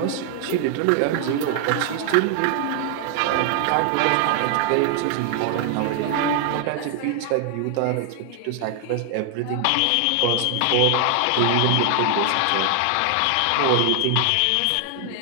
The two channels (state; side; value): different; both; correlation 0.00